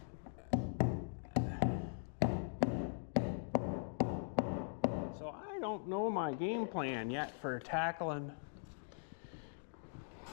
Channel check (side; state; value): right; silent; digital silence